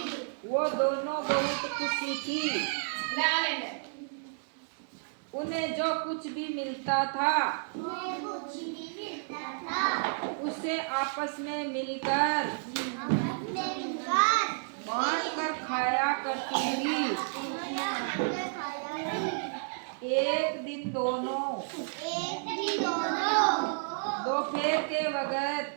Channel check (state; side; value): silent; left; digital silence